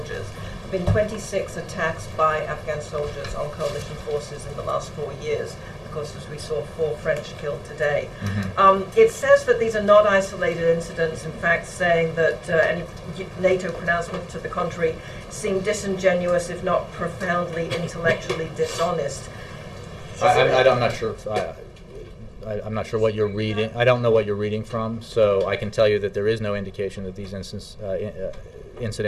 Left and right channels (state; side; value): identical; both; correlation 1.00